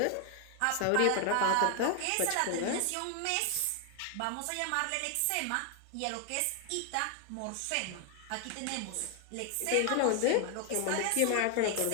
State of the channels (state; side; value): different; both; correlation 0.00